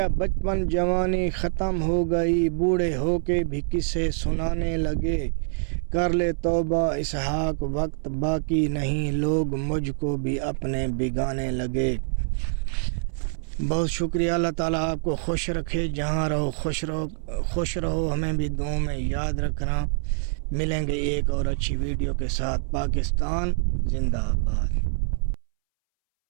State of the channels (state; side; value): silent; left; 61 dB below the other